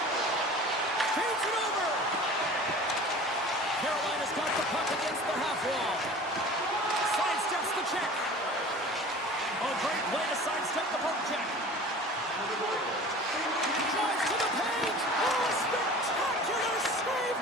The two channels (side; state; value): both; normal; correlation 0.41